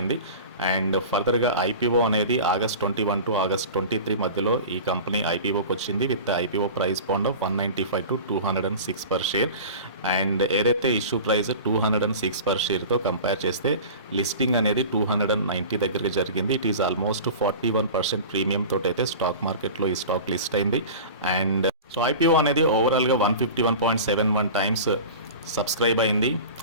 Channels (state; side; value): inverted; both; correlation -0.35